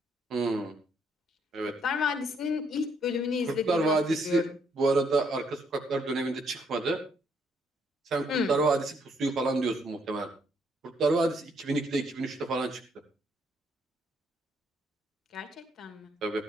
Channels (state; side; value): normal; both; correlation 0.71